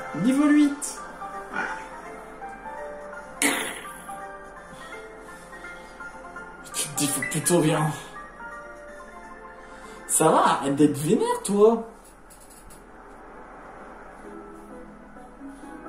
Niveau 8. Tu te dis faut plutôt bien. Ça va, arrête d'être vénère toi.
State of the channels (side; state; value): both; identical; correlation 1.00